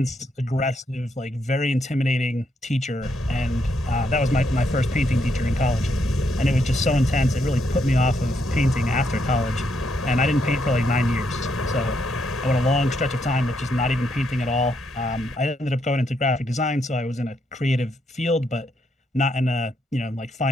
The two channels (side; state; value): both; normal; correlation 0.77